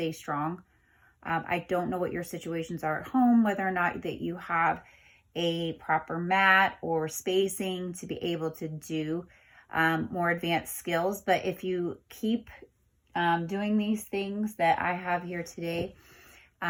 strong. I don't know what your situations are at home, whether or not that you have a proper mat or spacing to be able to do more advanced skills. But if you keep doing these things that I have here today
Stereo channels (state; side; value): identical; both; correlation 1.00